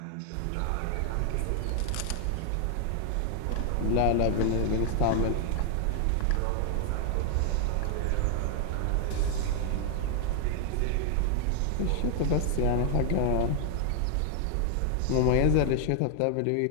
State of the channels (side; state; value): both; different; correlation 0.00